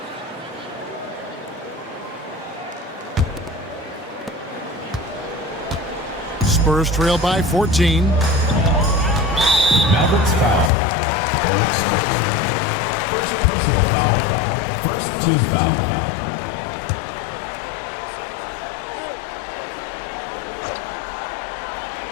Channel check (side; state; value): right; drops out; at 10.7 s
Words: Spurs trail by 14. Mavericks foul. First personal foul. First team foul.